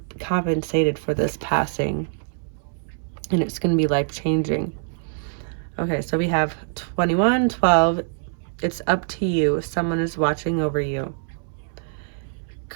compensated for this passing, and it's going to be life-changing. Okay, so we have 2112. It's up to you. Someone is watching over you.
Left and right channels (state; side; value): silent; left; 63 dB below the other